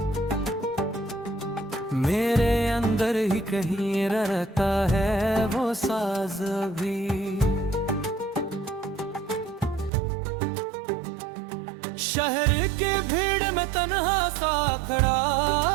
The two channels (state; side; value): drops out; left; at 9.9 s